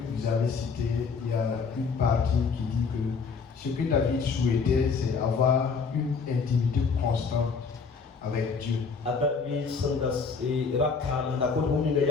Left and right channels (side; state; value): right; quieter; 5.2 dB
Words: vous avez cités, il y a une partie qui dit que ce que David souhaitait, c'est avoir une intimité constante avec Dieu. David sandas e rakana na ko huni na